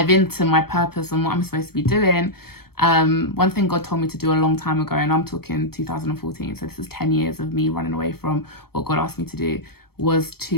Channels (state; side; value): late; right; 0.95 ms